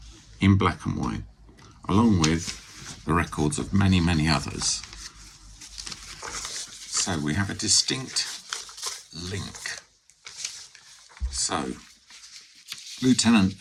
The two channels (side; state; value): both; identical; correlation 1.00